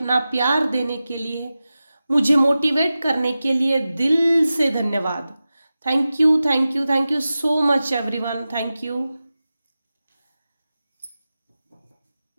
प्यार देने के लिए, मुझे मोटिवेट करने के लिए दिल से धन्यवाद। Thank you thank you thank you so much everyone, thank you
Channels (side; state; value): both; inverted; correlation -0.95